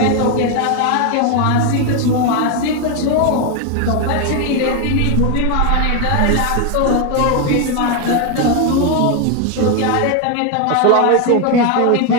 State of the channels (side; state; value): both; different; correlation 0.01